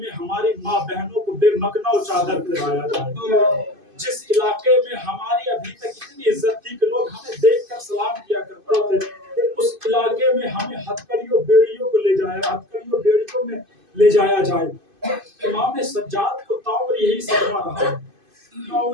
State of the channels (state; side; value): late; left; 2.5 ms